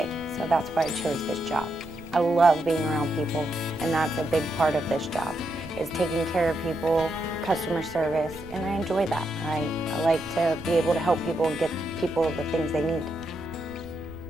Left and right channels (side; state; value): right; noise; rumble, 19 dB below the sound